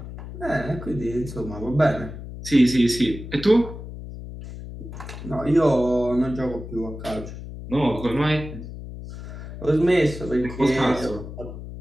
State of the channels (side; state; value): left; noise; hum, 11 dB below the sound